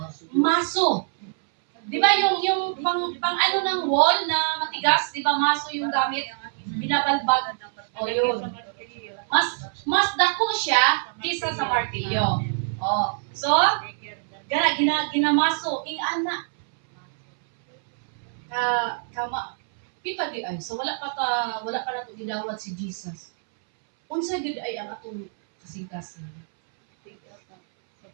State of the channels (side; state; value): left; silent; 62 dB below the other